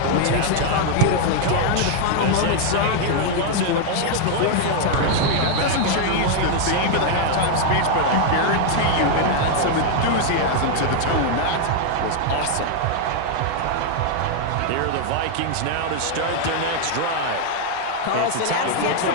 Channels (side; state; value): both; different; correlation 0.00